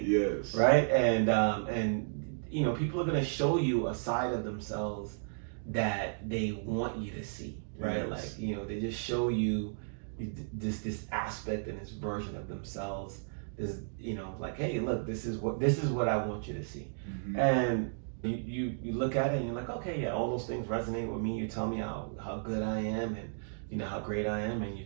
Yes. Right? And people are going to show you a side of themselves that they want you to see, right? Yes. Like, they just show you this aspect and this version of themselves. This, like, hey, look, this is what I want you to see. Mm-hmm. And you look at it and you're like, okay, yeah, all those things resonate with me. You tell me how good I am, and how great I am, and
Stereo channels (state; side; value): silent; left; digital silence